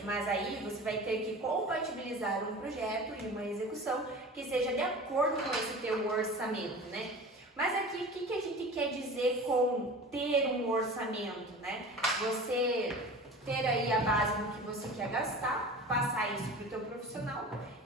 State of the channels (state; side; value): normal; both; correlation 0.36